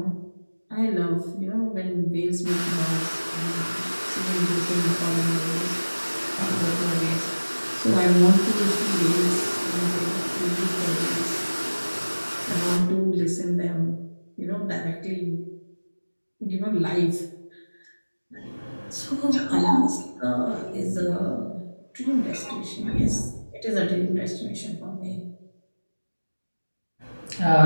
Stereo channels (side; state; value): both; inverted; correlation -1.00